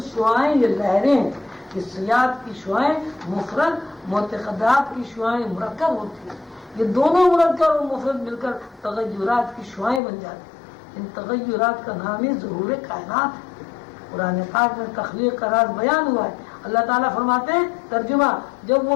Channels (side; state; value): right; drops out; at 10.0 s